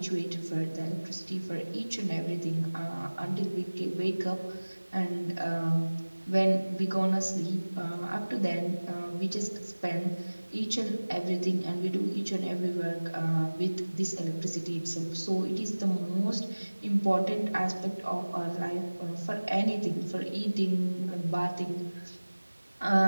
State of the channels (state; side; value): inverted; both; correlation -1.00